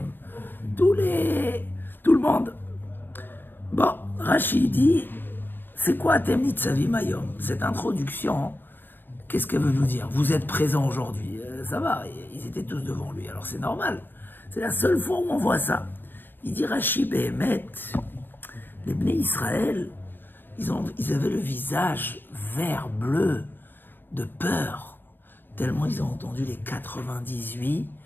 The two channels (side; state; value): right; late; 0.095 ms